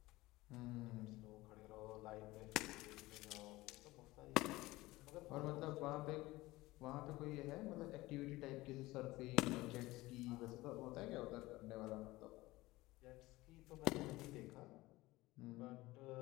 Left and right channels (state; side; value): quieter; right; 19.3 dB